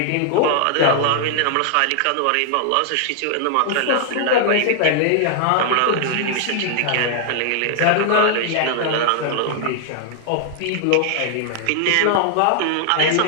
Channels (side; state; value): both; different; correlation 0.00